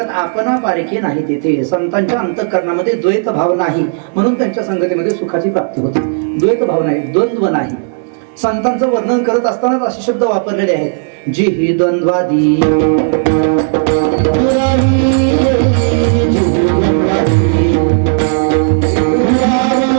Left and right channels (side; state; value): left; silent; digital silence